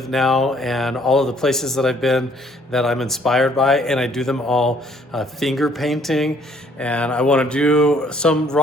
now and all of the places that I've been that I'm inspired by, and I do them all finger painting, and I want to do some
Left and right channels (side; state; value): both; normal; correlation 0.62